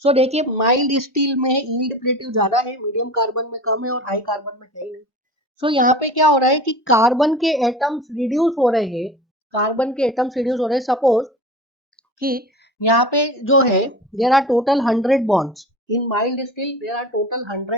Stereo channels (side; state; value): both; normal; correlation 0.35